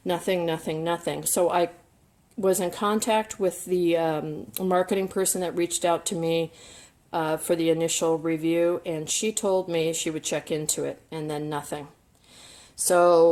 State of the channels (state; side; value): identical; both; correlation 1.00